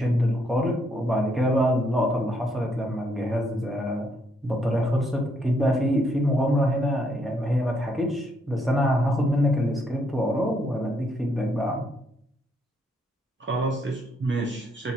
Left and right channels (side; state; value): both; normal; correlation 0.73